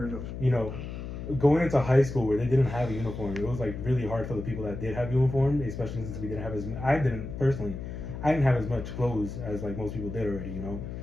of. you know, going into high school where they didn't have a uniform, it was like really hard for the people that did have uniform, especially since we didn't have I didn't have as much clothes as like most people did already, you know.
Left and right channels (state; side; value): noise; left; hum, 8 dB below the sound